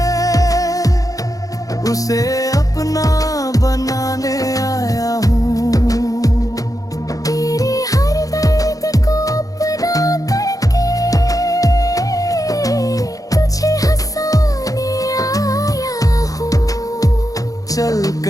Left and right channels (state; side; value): late; right; 0.17 ms